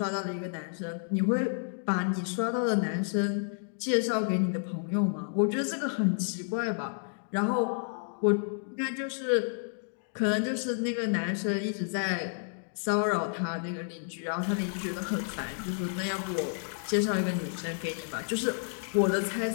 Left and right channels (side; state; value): right; silent; digital silence